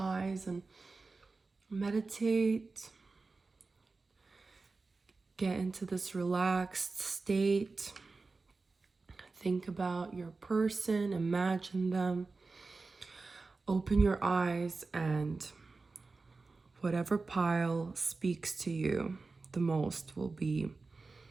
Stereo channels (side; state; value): left; quieter; 3.9 dB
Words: and meditate. Get into this relaxed state. Think about your person, imagine them. Open your eyes, and whatever pile speaks to you the most will be